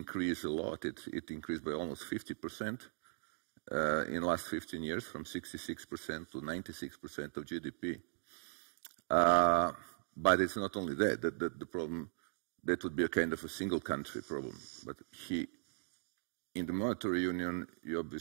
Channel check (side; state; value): left; silent; digital silence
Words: a lot. It increased by almost 50% in the last 15 years, from 66% to 96% of GDP. But it's not only that. The problem, that would be a kind of a single country problem. But in the monetary union, you